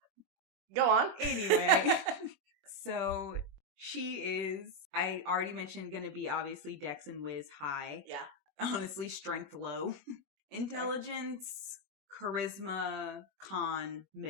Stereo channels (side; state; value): left; late; 21 ms